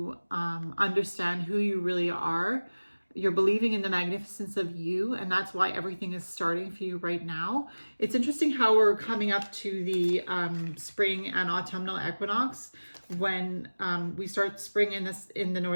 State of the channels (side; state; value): both; inverted; correlation -1.00